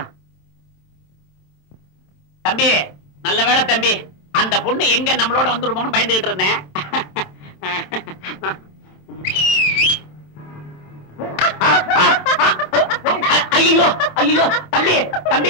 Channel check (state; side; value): late; right; 27 ms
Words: தம்பி நல்ல வேலை தம்பி, அந்த பொண்ணு எங்க நம்மளோட வந்துடுமோன்னு பயந்துகிட்டு இருந்தேன். ஐயோ ஐயோ தம்பி